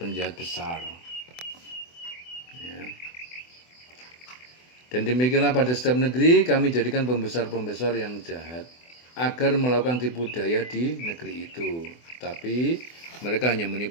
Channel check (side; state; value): right; late; 24 ms